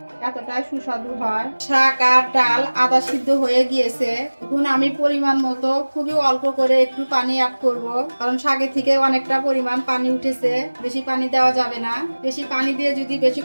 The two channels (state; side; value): inverted; both; correlation -1.00